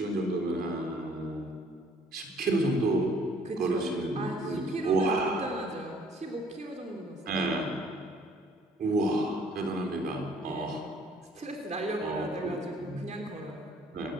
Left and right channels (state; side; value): normal; both; correlation 0.59